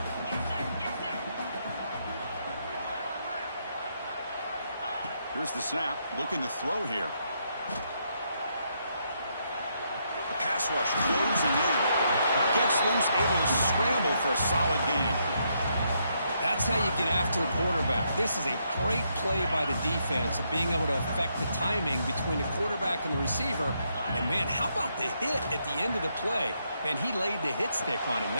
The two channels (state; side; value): inverted; both; correlation -0.77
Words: Here's the snap. Looking to throw here. The pass rush closing in. Gets loose, able to scramble for a solid gain. That's how you get after the quarterback. This is a great play by the defense of being able to affect the timing between the quarterback and the receiver. And, man, how about the hit at the end of the play? Man, he laid the hit stick on him